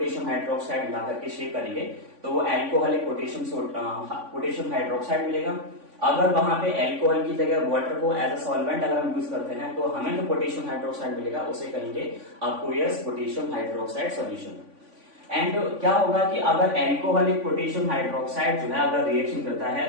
हाइड्रोक्साइड मिला करके शेक करेंगे तो वो एल्कोहलिक पोटेशियम हाइड्रोक्साइड मिलेगा। अगर वहां पे एल्कोहल की जगह वाटर को एज अ सॉल्वेंट अगर हम यूज करते हैं तो हमें जो पोटेशियम हाइड्रोक्साइड मिलेगा उसे कहेंगे अक्वस पोटेशियम हाइड्रोक्साइड सॉल्यूशन। एंड क्या होगा कि अगर एल्कोहलिक पोटेशियम हाइड्रोक्साइड जो है अगर रिएक्शन करता है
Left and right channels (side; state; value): left; late; 3.5 ms